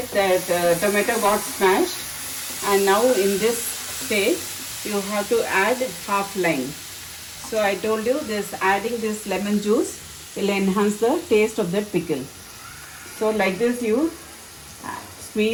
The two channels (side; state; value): both; identical; correlation 1.00